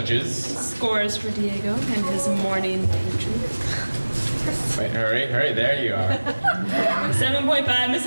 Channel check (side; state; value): both; inverted; correlation -1.00